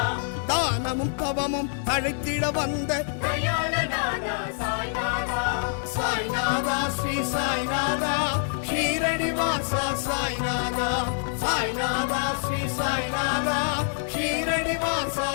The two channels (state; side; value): silent; right; 59 dB below the other